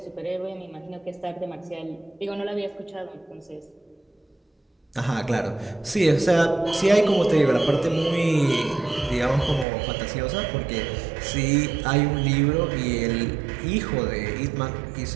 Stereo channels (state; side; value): drops out; left; at 9.7 s